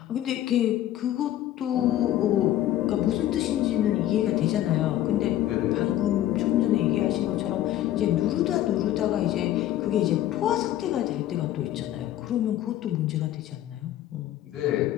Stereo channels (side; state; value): right; quieter; 13.0 dB